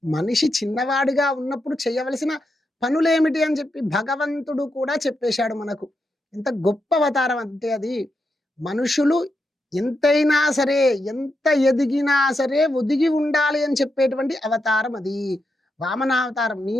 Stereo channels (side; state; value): both; normal; correlation 0.85